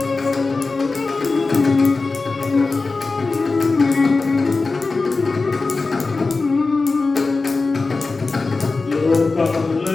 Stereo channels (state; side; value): quieter; right; 3.8 dB